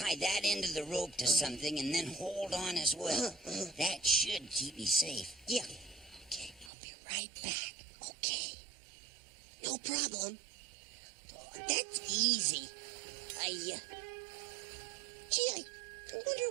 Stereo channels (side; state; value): left; drops out; at 6.7 s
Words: that end of the rope to something and then hold on as well. That should keep me safe. Yeah, Okay, I'll be right back. Okay. no problem. That's easy. I wonder